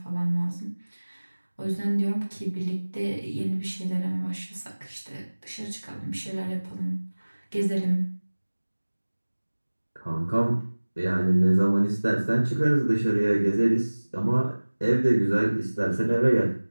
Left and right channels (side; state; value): both; inverted; correlation -1.00